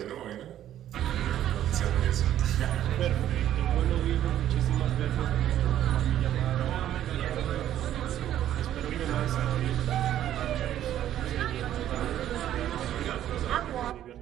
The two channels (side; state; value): left; quieter; 11.7 dB